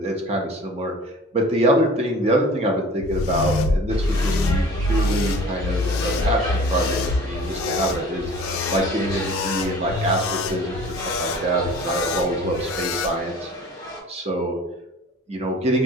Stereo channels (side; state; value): both; normal; correlation 0.45